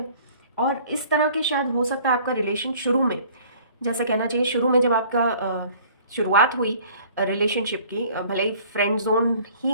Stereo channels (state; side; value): inverted; both; correlation -0.52